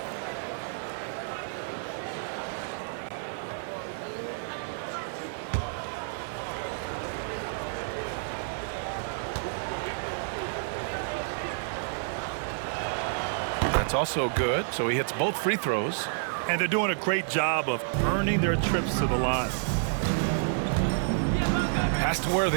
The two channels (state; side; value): silent; left; digital silence